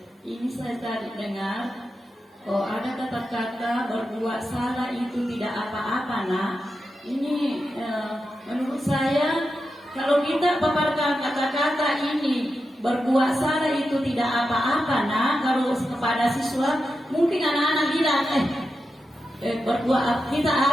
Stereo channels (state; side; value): normal; both; correlation 0.89